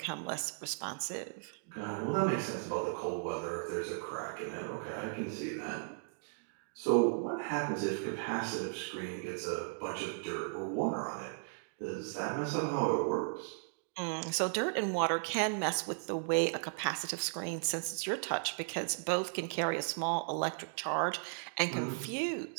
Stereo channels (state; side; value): silent; left; digital silence